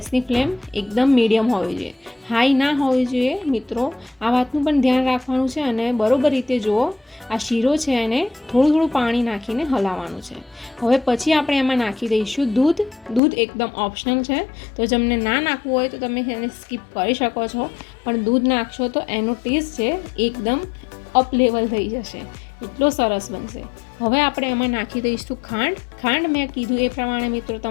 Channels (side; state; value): right; drops out; at 13.2 s